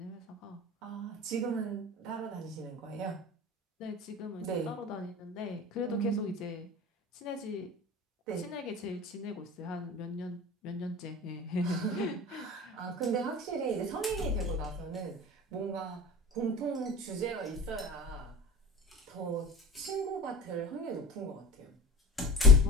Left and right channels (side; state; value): both; normal; correlation 0.36